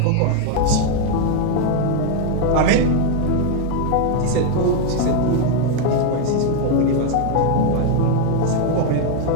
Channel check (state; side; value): different; both; correlation 0.01